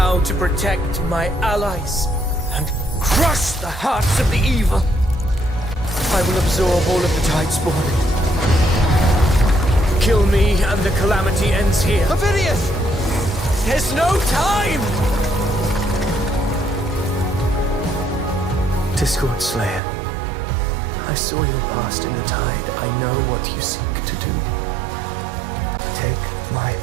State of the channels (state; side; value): drops out; left; at 19.8 s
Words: to protect my allies and crush the hearts of the evil. I will absorb all of the Tidespawn. Kill me and the calamity ends here. Ovidius! There's no time! Discord Slayer, I saw your past in the tide. I know what you seek to do. Take my